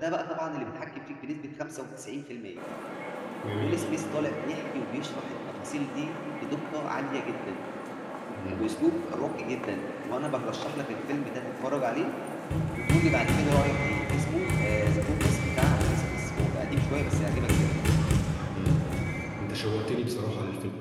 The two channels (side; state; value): both; identical; correlation 1.00